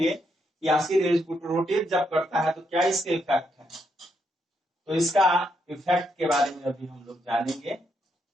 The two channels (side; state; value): both; normal; correlation 0.78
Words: कि आखिर रोटेट जब करता है तो क्या इसके इफेक्ट है। तो इसका इफेक्ट के बारे में अभी हम लोग जानेंगे।